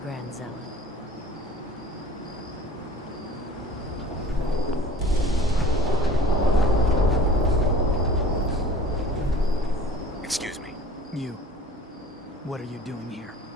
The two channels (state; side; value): normal; both; correlation 0.45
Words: Grand Zealot. Excuse me. You. What are you doing here?